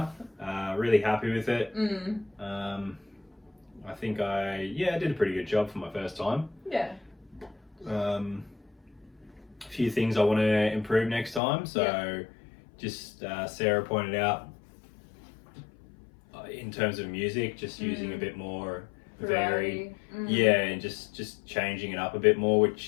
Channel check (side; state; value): right; drops out; at 11.4 s